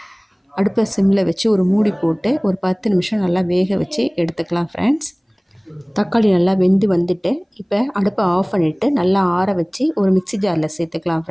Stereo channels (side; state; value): both; identical; correlation 1.00